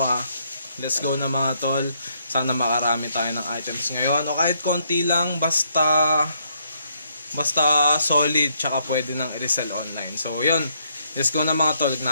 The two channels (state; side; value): inverted; both; correlation -0.72